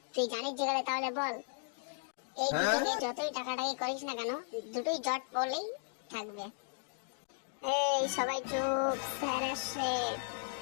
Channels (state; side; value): silent; right; digital silence